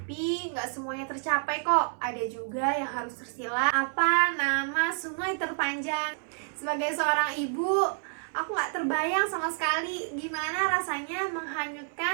nggak semuanya tercapai kok. Ada juga yang harus tersilat. Apa nama sungai terpanjang? Sebagai seorang ibu, aku nggak terbayang sama sekali gimana rasanya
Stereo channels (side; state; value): left; silent; 56 dB below the other